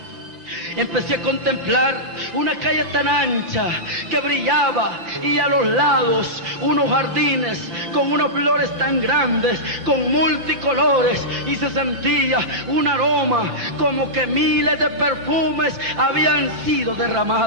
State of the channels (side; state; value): left; late; 5.8 ms